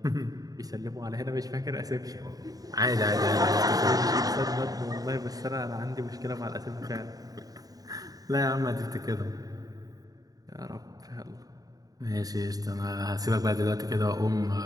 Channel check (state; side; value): late; left; 0.18 ms